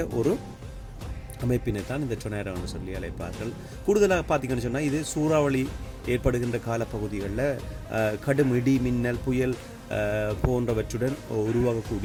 ஒரு அமைப்பினை தான் இந்த டொர்னடோன்னு சொல்லி அழைப்பார்கள். கூடுதலாக பார்த்திங்கன்னு சொன்னால், இது சூறாவளி ஏற்படுகின்ற காலப்பகுதிகளில் கடும் இடி மின்னல் புயல் போன்றவற்றுடன்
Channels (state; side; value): identical; both; correlation 1.00